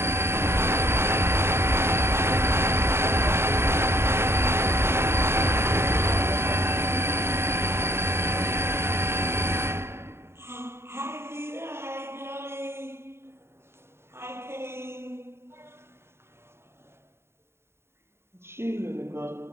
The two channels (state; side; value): late; left; 0.12 ms